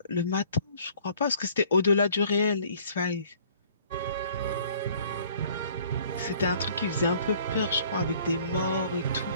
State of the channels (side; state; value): both; inverted; correlation -0.56